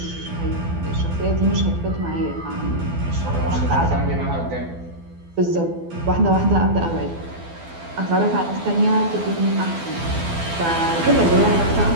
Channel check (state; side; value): late; left; 12 ms